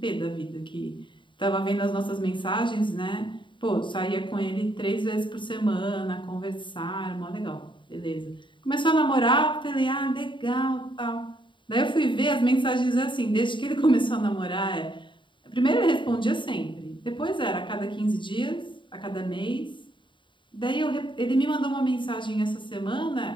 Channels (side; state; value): right; late; 0.23 ms